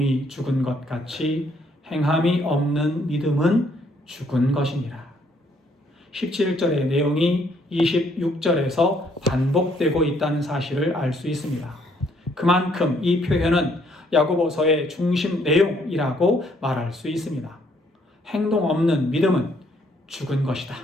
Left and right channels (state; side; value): normal; both; correlation 0.67